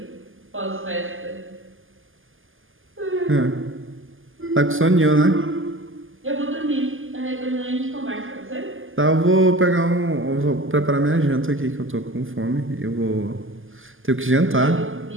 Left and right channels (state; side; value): late; left; 0.58 ms